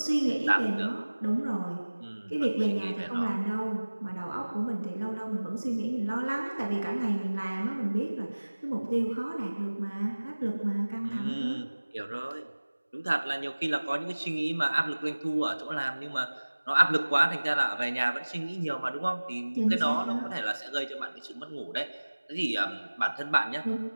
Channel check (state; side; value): inverted; both; correlation -1.00